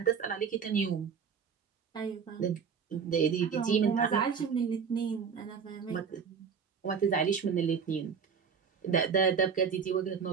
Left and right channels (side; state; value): left; quieter; 6.5 dB